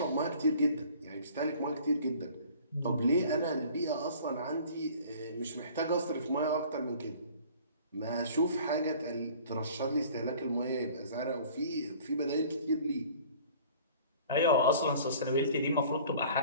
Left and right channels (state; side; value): inverted; both; correlation -0.49